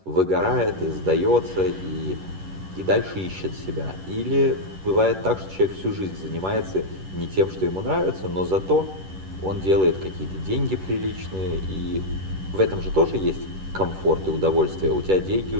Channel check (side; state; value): left; late; 11 ms